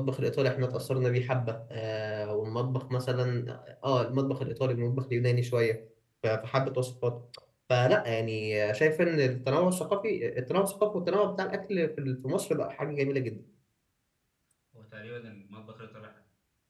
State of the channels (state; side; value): identical; both; correlation 1.00